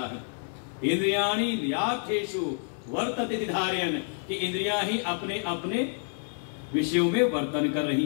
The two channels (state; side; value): silent; right; digital silence